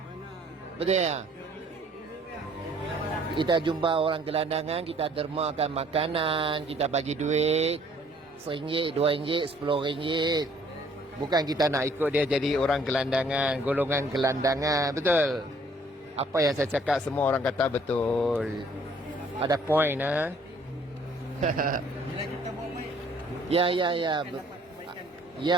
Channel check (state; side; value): normal; both; correlation 0.60